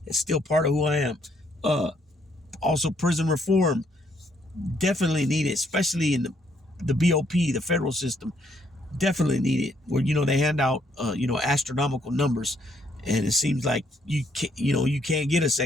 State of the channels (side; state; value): both; normal; correlation 0.71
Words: it's still part of who I am. Also, prison reform. Definitely need it, especially in the BOP, the federal system. Definitely need it. Where, they hand out, astronomical numbers. And it seems like you can't get a